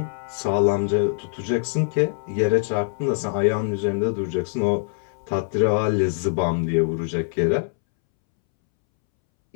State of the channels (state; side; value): silent; right; 63 dB below the other